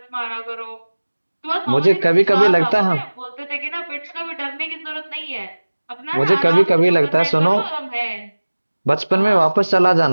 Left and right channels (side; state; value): both; inverted; correlation -1.00